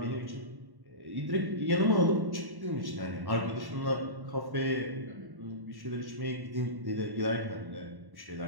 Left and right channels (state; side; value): late; left; 1.1 ms